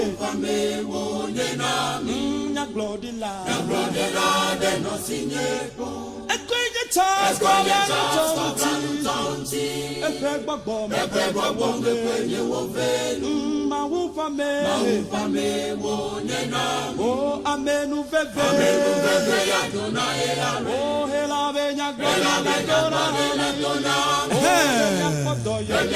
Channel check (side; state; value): both; identical; correlation 1.00